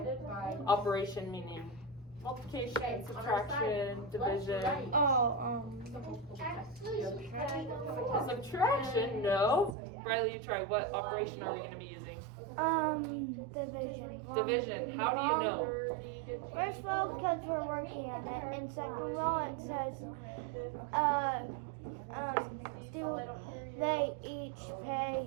by. Operation meaning multiplication, subtraction, division. Subtraction? No. Riley, you try. What operation are we gonna be using? Division. Division. How do you know? First of all, because we're working on it, and second of all, it says, do they each pay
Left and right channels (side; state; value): left; drops out; at 9.8 s